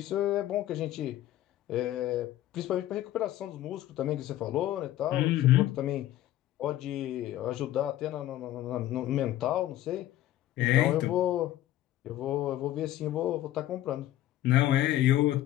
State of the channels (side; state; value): right; quieter; 13.9 dB